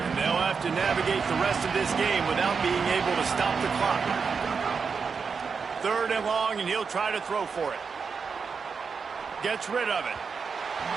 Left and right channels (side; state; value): left; quieter; 5.5 dB